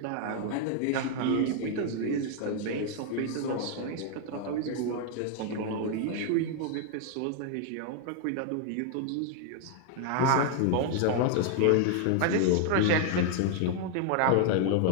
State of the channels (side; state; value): both; different; correlation 0.00